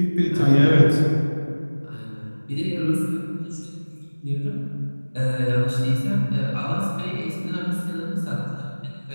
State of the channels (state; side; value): inverted; both; correlation -1.00